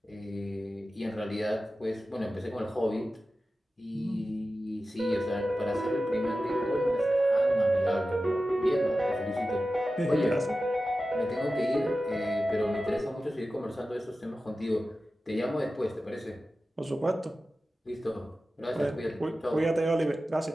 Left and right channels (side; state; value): both; normal; correlation 0.94